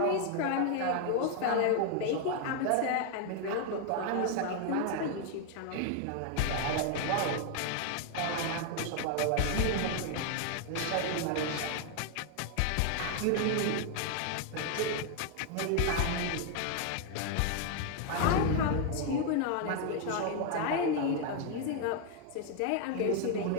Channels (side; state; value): both; different; correlation 0.00